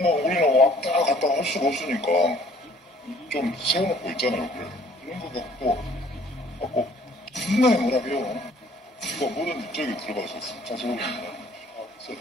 우리는 왔다 갔다 할 수가 없으니까 좀 세워놓고 있잖아요. 그래. 이런 거 갖고 존나 뭐라고요. 그러니까 뭐든 저기 들어가서 차 세우거든요.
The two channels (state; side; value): normal; both; correlation 0.57